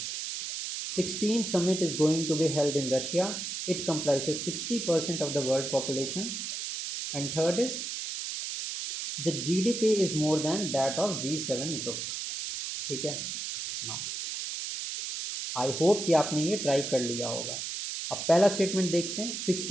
16th summit is going to be held in Russia. It comprises 60% of the world population. And third is the GDP is more than that of G7 group. ठीक है ना? आई hope कि आपने ये try कर लिया होगा। अब पहला स्टेटमेंट देखते हैं।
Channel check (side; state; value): right; noise; hiss, 5 dB below the sound